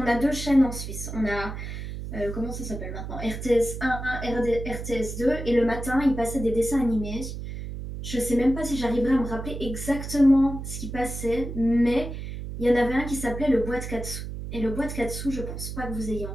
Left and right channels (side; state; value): right; noise; hum, 7 dB below the sound